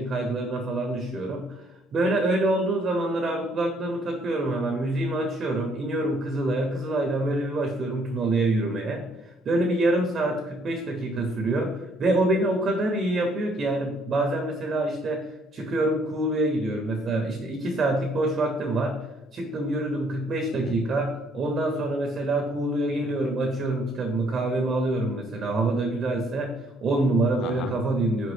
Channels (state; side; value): normal; both; correlation 0.66